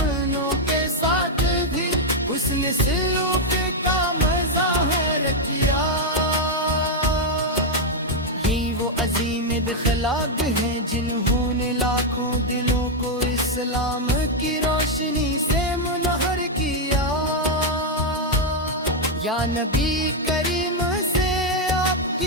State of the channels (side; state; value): both; normal; correlation 0.01